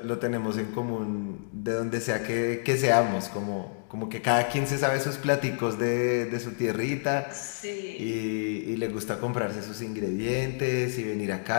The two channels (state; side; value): silent; right; digital silence